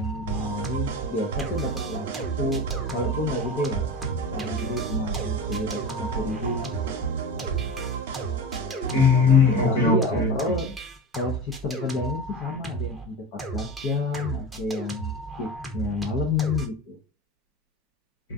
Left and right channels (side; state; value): both; normal; correlation 0.28